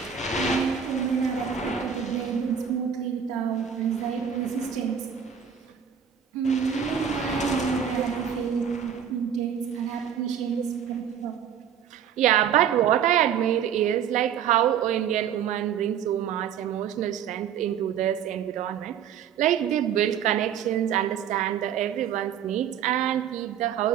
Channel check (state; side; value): quieter; left; 8.5 dB